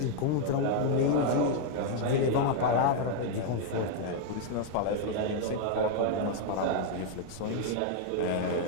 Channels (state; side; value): different; both; correlation 0.00